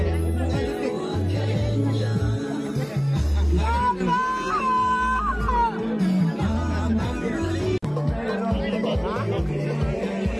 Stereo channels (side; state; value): both; identical; correlation 1.00